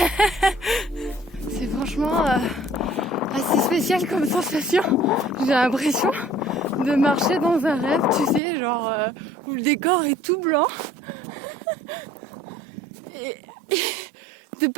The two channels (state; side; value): drops out; left; at 8.4 s